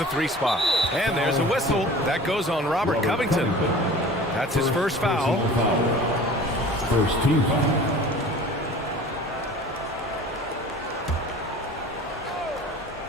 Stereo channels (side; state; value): both; normal; correlation 0.42